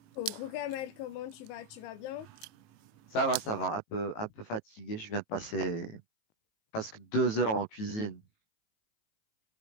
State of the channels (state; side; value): late; right; 18 ms